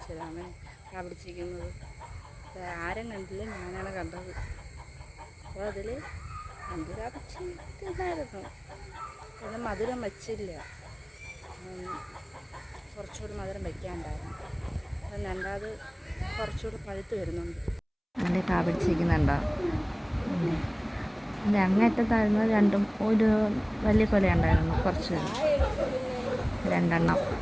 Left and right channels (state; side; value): identical; both; correlation 1.00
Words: തരാമേ. പ്രാ പിടിച്ചിരിക്കുന്നത് ആരും കണ്ടില്ല, ഞാനാണ് കണ്ടത്. അപ്പോൾ അതിൽ എന്തിനാ പിടിച്ചിരുന്നായിരുന്നു. പിന്നെ മധുരം വെച്ചില്ല, കുറച്ചുകൂടി മധുരം വയ്ക്കാനുണ്ടായിരുന്നു. അപ്പം രണ്ടാമത് കുറച്ചുകൂടി പഴുത്ത് വരുന്നുണ്ട്. അതിൻ്റെ പ്രാ പിടിച്ചിരിക്കുന്നുണ്ടോ? അതിൻ്റെ അങ്ങേറ്റത്തായിരുന്നു രണ്ടും. ഒരു വലിയ കൊല ഉണ്ടായിരുന്നു, കുറച്ച് രണ്ടെണ്ണം